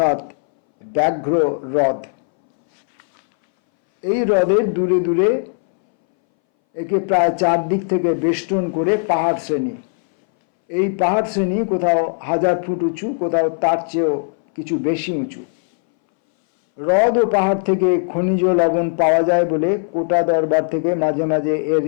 ব্যাঘ্র হ্রদ। এই হ্রদের দূরে দূরে একে প্রায় 4 দিক থেকে বেষ্টন করে পাহাড় শ্রেণী। এই পাহাড় শ্রেণী কোথাও 1000 ফুট উঁচু, কোথাও তার চেয়েও কিছু বেশি উঁচু। হ্রদ ও পাহাড় থেকে খনিজ লবণ পাওয়া যায় বলে কোটা দরবার থেকে মাঝে মাঝে এর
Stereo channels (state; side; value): silent; right; 64 dB below the other